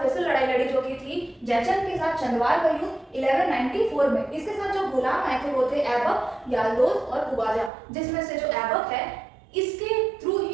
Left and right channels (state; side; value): drops out; left; at 7.7 s